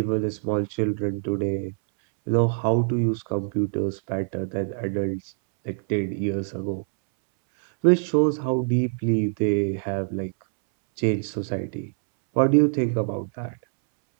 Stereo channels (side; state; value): left; silent; 62 dB below the other